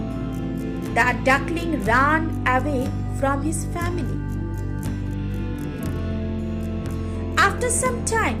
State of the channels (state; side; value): identical; both; correlation 1.00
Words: the duckling ran away from his family. After some